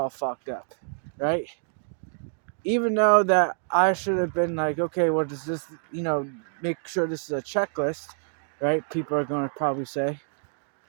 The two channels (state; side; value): silent; left; 60 dB below the other